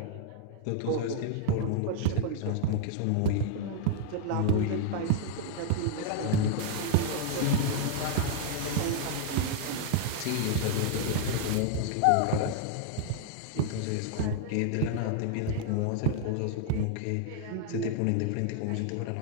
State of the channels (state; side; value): different; both; correlation -0.01